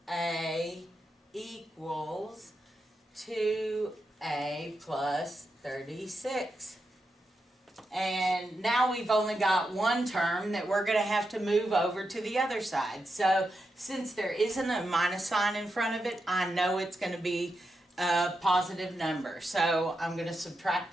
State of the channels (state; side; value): normal; both; correlation 0.86